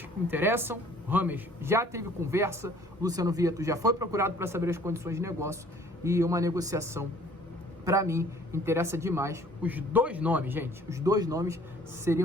que interessam. O James já teve conversa, o Luciano Vieto já foi procurado para saber as condições de negócio e uma negociação, para mim, interessa demais. Os 2 nomes, gente, os 2 nomes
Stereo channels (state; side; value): normal; both; correlation 0.55